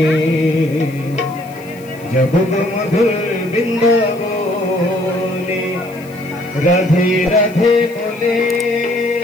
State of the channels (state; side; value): noise; left; hiss, 24 dB below the sound